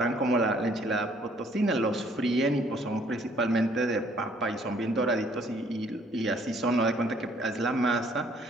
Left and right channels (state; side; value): normal; both; correlation 0.62